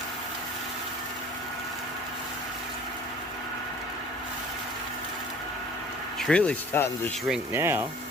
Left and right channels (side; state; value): both; normal; correlation 0.48